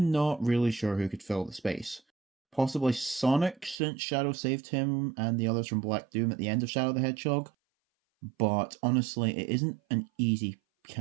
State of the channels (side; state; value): left; drops out; at 3.8 s